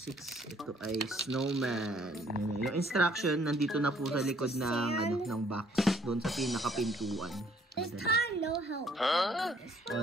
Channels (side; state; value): both; normal; correlation 0.62